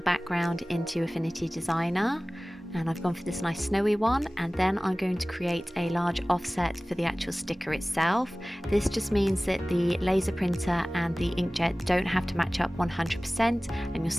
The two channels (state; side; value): normal; both; correlation 0.98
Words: background into Affinity Designer, and I've gone for this nice snowy one, and then I'm going to create a large offset for the actual sticker itself. This just means that the laser printer and the inkjet don't have to match up 100% and you'll